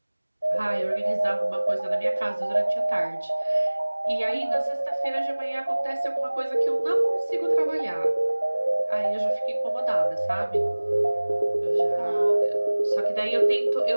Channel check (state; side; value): inverted; both; correlation -1.00